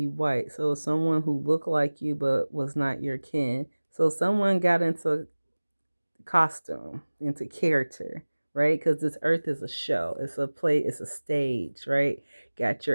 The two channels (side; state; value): both; inverted; correlation -1.00